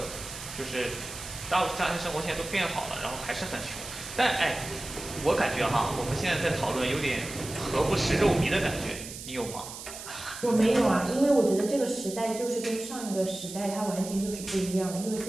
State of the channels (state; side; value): noise; right; hiss, 11 dB below the sound